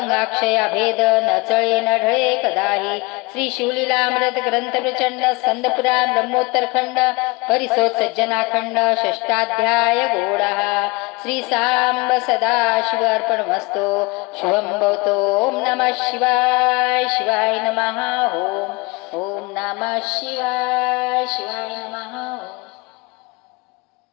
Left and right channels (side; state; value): right; quieter; 25.7 dB